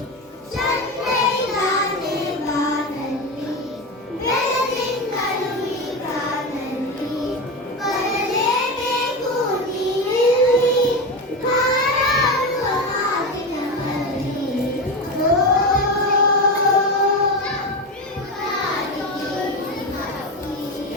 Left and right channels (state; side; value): normal; both; correlation 0.19